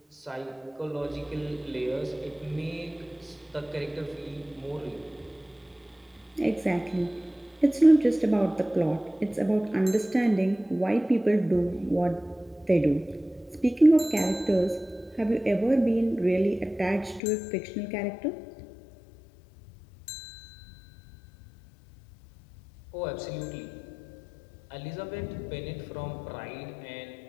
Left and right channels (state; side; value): drops out; right; at 17.2 s